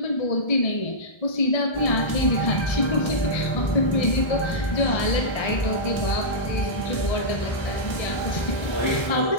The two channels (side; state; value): right; late; 1.3 ms